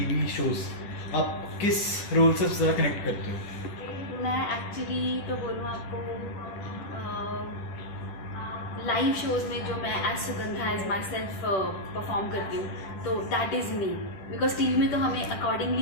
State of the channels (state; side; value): late; right; 10 ms